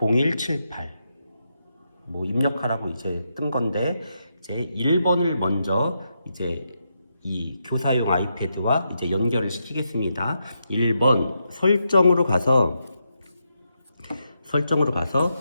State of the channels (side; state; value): both; inverted; correlation -0.83